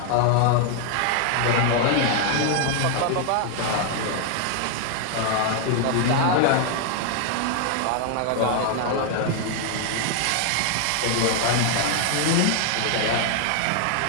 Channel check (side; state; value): both; different; correlation 0.00